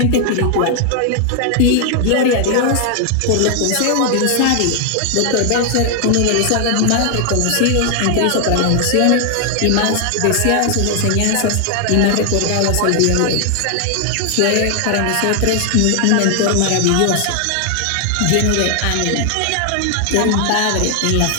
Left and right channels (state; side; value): different; both; correlation 0.00